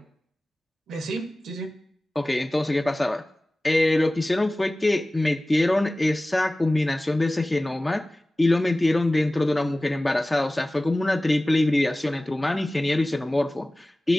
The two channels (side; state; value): both; normal; correlation 0.97